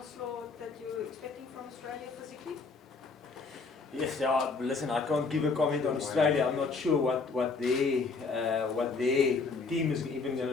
that you're expecting from Australia physically? Yes, yeah, listen, I can't give a comment on Australia. I'm not sure what their team is even going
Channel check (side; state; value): right; quieter; 4.4 dB